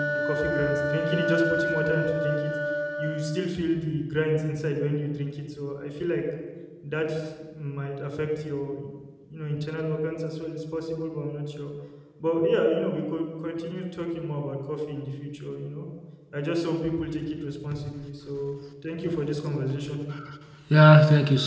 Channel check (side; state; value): both; identical; correlation 1.00